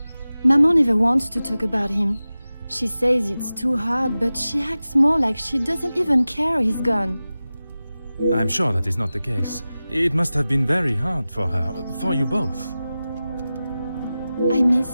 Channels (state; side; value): inverted; both; correlation -0.95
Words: Maman never wants to talk about him. She says it's too hard, but she acts more like she doesn't even care he's gone. I'm sure that is not the case. It must have been very hard for her, for you both. I